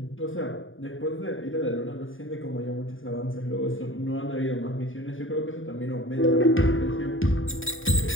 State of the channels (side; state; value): right; late; 0.58 ms